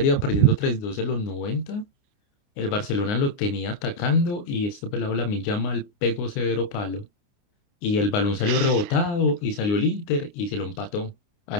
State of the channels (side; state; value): right; late; 29 ms